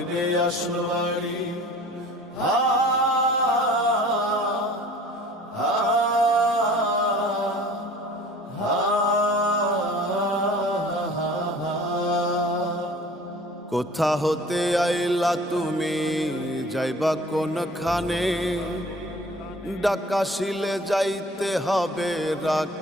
আসল বাড়ি। কোথা হতে আইলা তুমি, যাইবা কোনখানে? ডাকাশিলে যাইতে হবে,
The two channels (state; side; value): normal; both; correlation 0.47